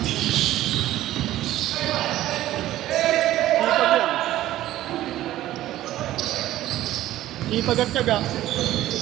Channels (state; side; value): quieter; left; 14.4 dB